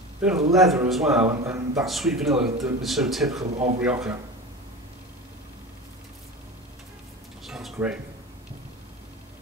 bit of leather as well, and that sweet vanilla that is so typical of Rioja. Sounds great.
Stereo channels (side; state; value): both; normal; correlation 0.30